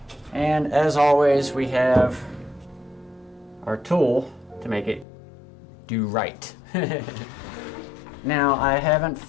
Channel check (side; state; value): right; drops out; at 5.1 s